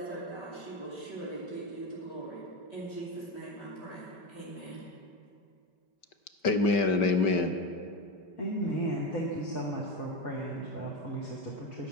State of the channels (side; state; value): right; late; 5.2 ms